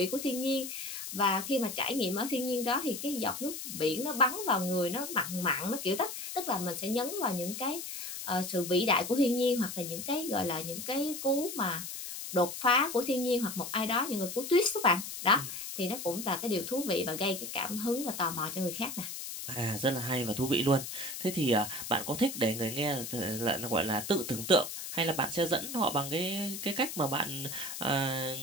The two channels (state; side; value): noise; left; hiss, 7 dB below the sound